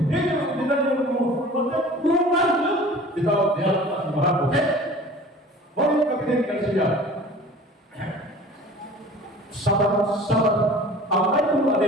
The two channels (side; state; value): both; normal; correlation 0.44